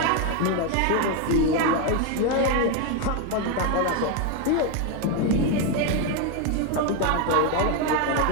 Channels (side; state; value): both; different; correlation 0.02